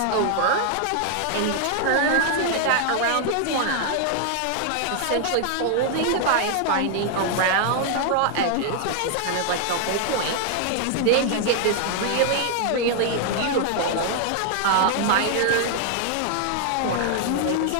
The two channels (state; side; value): different; both; correlation 0.00